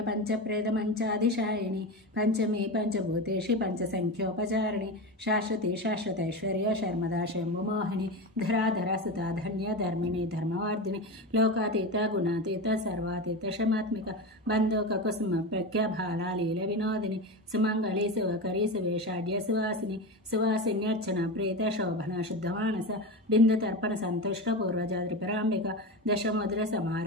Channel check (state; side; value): normal; both; correlation 0.22